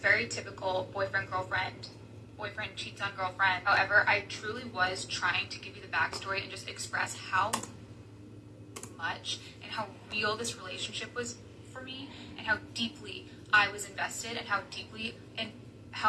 very typical boyfriend cheats on girlfriend. However, I truly was trying to give you the backstory and just express how much and how real this relationship was for me, and how deeply I was invested, and how deeply and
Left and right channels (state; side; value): identical; both; correlation 1.00